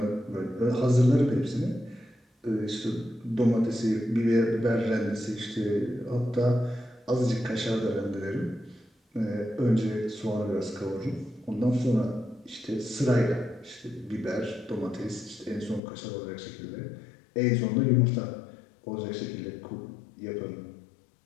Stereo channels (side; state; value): right; drops out; at 15.8 s